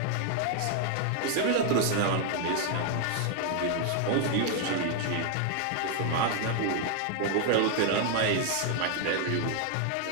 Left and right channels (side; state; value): both; different; correlation 0.00